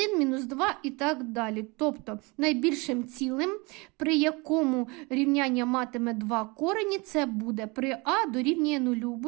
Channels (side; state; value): left; quieter; 27.0 dB